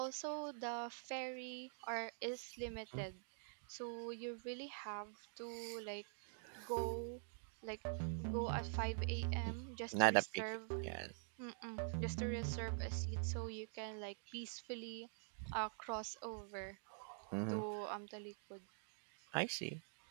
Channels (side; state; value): left; silent; digital silence